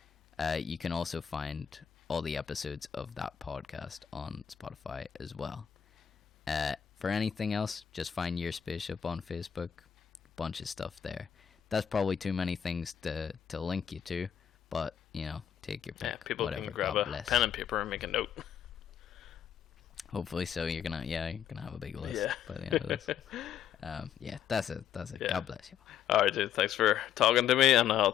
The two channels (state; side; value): quieter; right; 9.1 dB